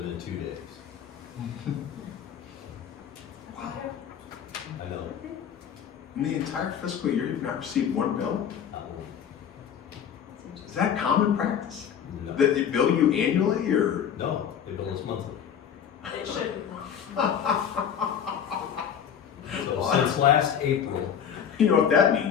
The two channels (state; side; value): quieter; right; 8.4 dB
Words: in 2 days. Wow. I know, In the entire fiscal year, you've not received one bill? not one. Is that common practice? No. That they bill you annually or? No, they bill us monthly. It should. So since last April, You know what that